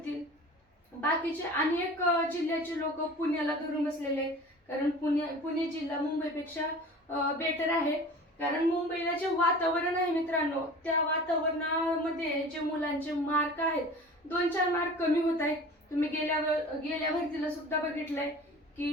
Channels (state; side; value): normal; both; correlation 0.40